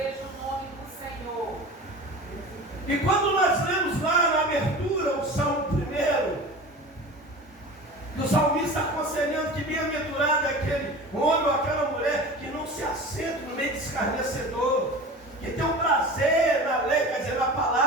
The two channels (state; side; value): normal; both; correlation 0.35